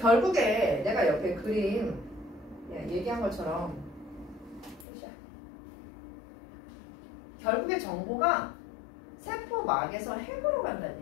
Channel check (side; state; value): right; drops out; at 4.9 s